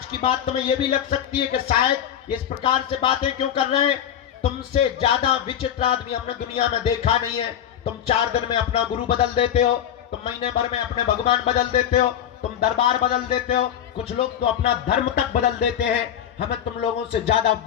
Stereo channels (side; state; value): right; quieter; 9.8 dB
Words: की बात तुम्हें यह भी लग सकती है कि शायद इस प्रकार से बातें क्यों कर रहे हैं। तुमसे ज्यादा विचित्र आदमी हमने दुनिया में देखा नहीं है। तुम 4 दिन में अपना गुरु बदल देते हो, तुम महीने भर में अपने भगवान बदल देते हो, तुम दरबार बदल देते हो, कुछ लोग तो अपना धर्म तक बदल देते हैं। हमें तुम लोगों से ज्यादा